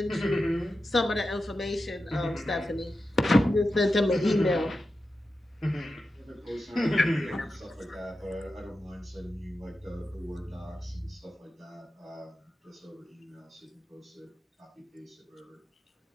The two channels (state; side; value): normal; both; correlation 0.91